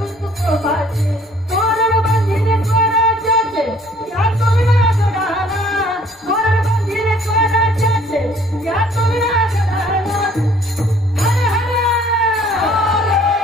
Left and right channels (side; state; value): both; normal; correlation 0.58